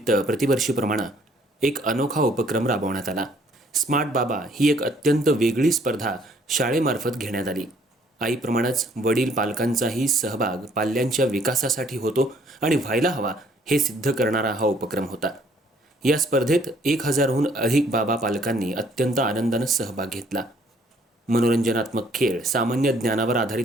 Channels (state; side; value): normal; both; correlation 0.62